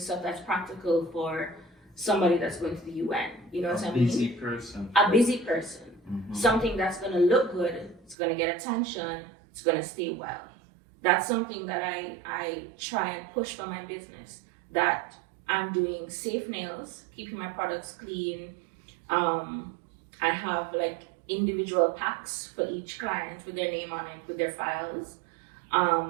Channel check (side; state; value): left; drops out; at 8.2 s